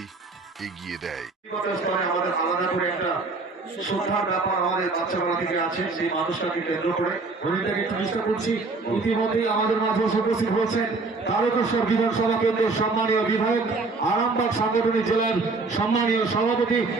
এগিয়ে দেয়। আমাদের আলাদা করে একটা শ্রদ্ধার ব্যাপার আমাদের বাচ্চাবেলা থেকে আছে, সেই মানুষটাকে কেন্দ্র করে হরিণটাকে একটু চেষ্টা করছি। ইতিমধ্যেই আমাদের মাঝে উপস্থিত হয়েছেন তারকেশ্বর বিধানসভা কেন্দ্রের সম্মানীয় বিধায়ক, আরামবাগ সাংগঠনিক জেলার সম্মানীয় সভাপতি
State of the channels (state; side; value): quieter; left; 3.8 dB